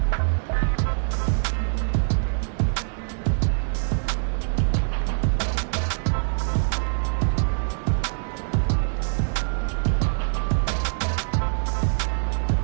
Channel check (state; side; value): silent; left; digital silence